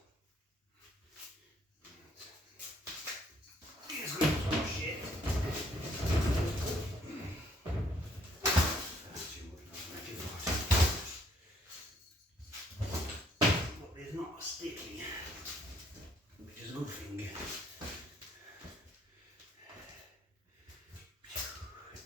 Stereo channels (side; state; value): both; normal; correlation 0.66